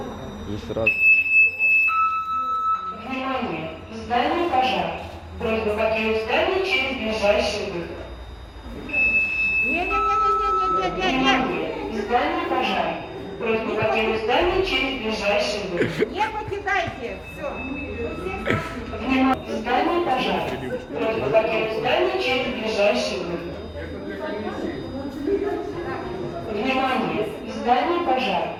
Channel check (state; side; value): identical; both; correlation 1.00